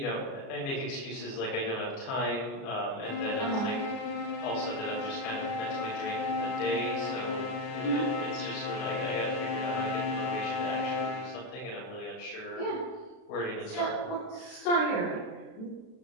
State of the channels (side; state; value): right; late; 37 ms